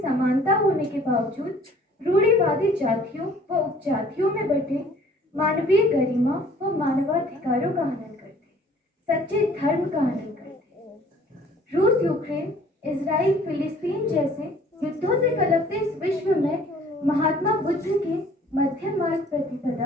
समानता होने के बावजूद रूढ़िवादी जातियों व उपजातियों में बटे मानवीय गरिमा व मानवाधिकारों का हनन करते, सच्चे धर्म का हनन करते। रूस, यूक्रेन, इजराइल, फिलिस्तीन जैसे युद्धों से कलपते इस विश्व में महात्मा बुद्ध के मध्य मार्ग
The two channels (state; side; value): normal; both; correlation 0.55